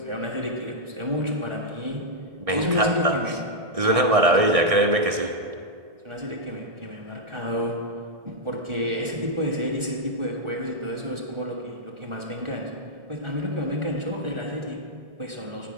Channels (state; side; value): late; left; 1.6 ms